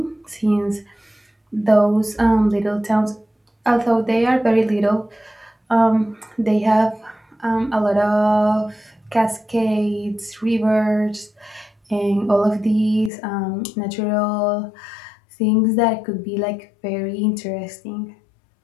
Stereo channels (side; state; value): right; drops out; at 13.1 s